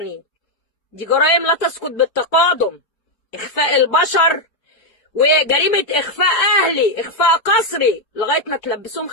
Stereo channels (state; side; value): late; right; 4.6 ms